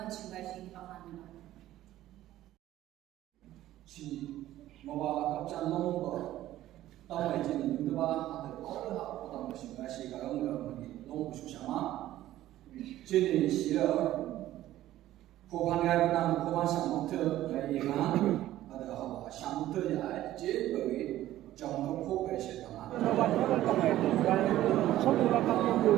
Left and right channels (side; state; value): left; quieter; 14.1 dB